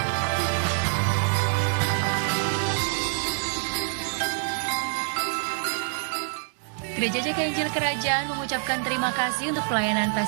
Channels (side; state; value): left; silent; digital silence